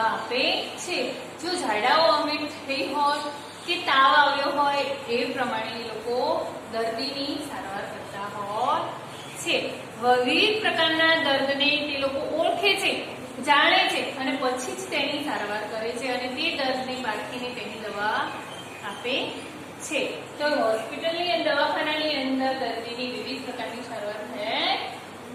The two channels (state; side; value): identical; both; correlation 1.00